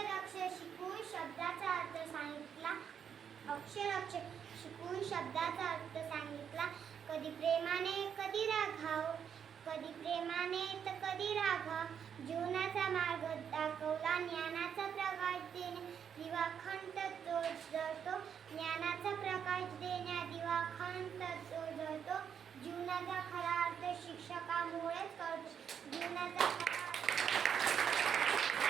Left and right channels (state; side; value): quieter; left; 7.9 dB